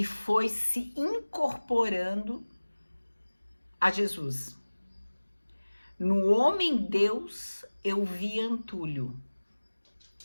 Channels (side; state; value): both; inverted; correlation -1.00